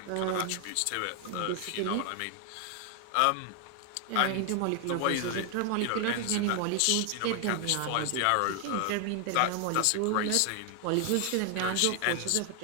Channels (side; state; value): both; different; correlation 0.00